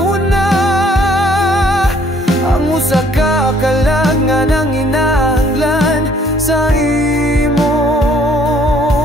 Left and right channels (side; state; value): both; normal; correlation 0.61